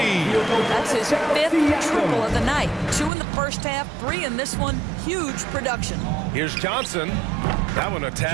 That's his 5th triple of the night. 2 in the first half, 3 in this one. Huge production. Here's Johnson. That one a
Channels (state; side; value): drops out; left; at 3.1 s